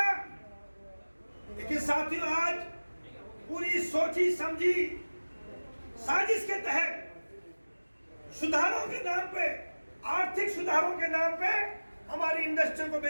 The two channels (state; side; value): inverted; both; correlation -1.00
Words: लेकिन साथियों, आज पूरी सोची समझी साजिश के तहत सुधारों के नाम पे, आर्थिक सुधारों के नाम पे हमारी इंडस्ट्री को